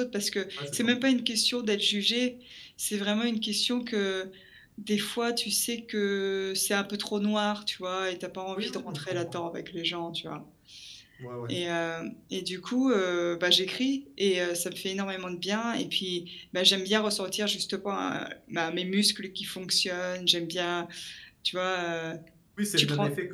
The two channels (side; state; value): both; identical; correlation 1.00